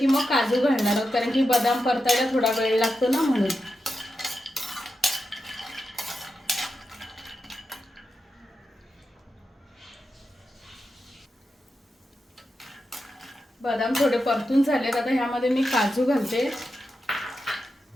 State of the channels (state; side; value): normal; both; correlation 0.89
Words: मग काजू घालणार आहोत, कारण की बदाम परतायला थोडा वेळ लागतो ना, म्हणून। बदाम थोडे परतून झालेत, आता ह्यामध्ये मी काजू घालते।